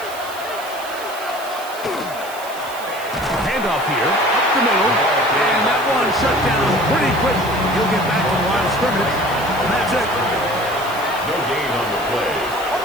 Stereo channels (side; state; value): right; noise; hiss, 15 dB below the sound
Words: Handoff here, up the middle, and that one shut down pretty quickly. He'll get back to the line of scrimmage, and that's it. No gain on the play.